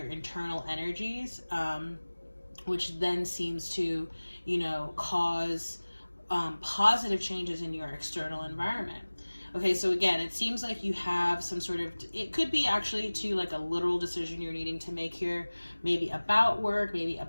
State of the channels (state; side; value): inverted; both; correlation -1.00